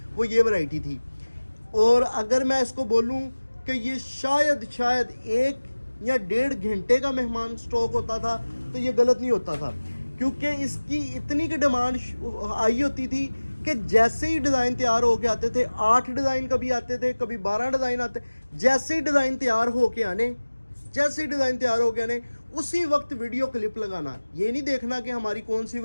वो ये वैरायटी थी। और अगर मैं इसको बोलूं कि ये शायद एक या 1.5 घंटे का मेहमान स्टॉक होता था तो ये गलत नहीं होता था, क्योंकि इसकी इतनी की डिमांड आई होती थी कि जैसे ही डिज़ाइन तैयार होके आते थे, 8 डिज़ाइन कभी आते थे, कभी 12 डिज़ाइन आते, जैसे ही डिज़ाइन तैयार होके आने उसी वक्त वीडियो क्लिप लगाना। ये नहीं देखना कि हमारी कौन सी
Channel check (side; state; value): both; inverted; correlation -1.00